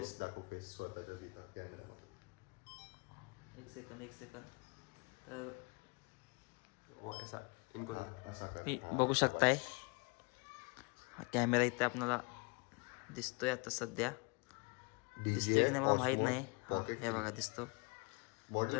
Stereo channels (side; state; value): right; quieter; 30.1 dB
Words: दाखव, फेस स्वतःच्या तिथं कॅमेरामध्ये. एक सेकंद. तर ऐसा इनको असा मी बघू शकताय हा कॅमेरा इथे आपल्याला दिसतोय आता सध्या. दिसतोय की नाही मला माहित नाही. हे बघा दिसतो.